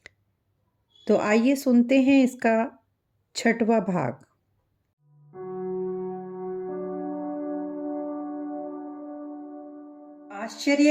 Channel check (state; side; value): identical; both; correlation 1.00